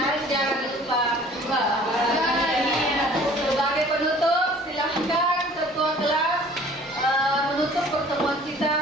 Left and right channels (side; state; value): both; normal; correlation 0.51